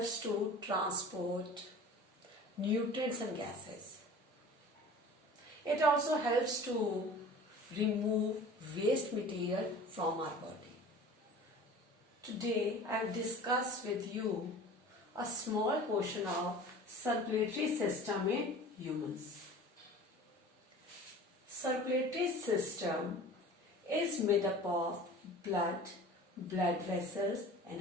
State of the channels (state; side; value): normal; both; correlation 0.41